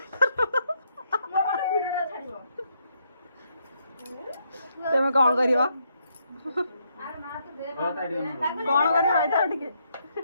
तुम कौन करिवा कौन करिवा टिके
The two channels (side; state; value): both; inverted; correlation -0.75